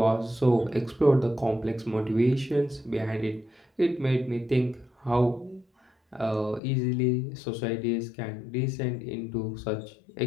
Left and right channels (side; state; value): right; drops out; at 6.6 s